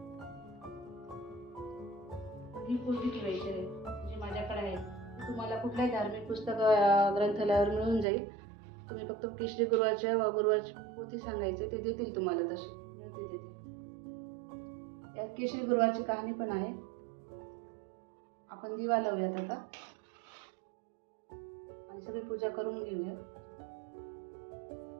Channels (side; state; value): left; drops out; at 8.1 s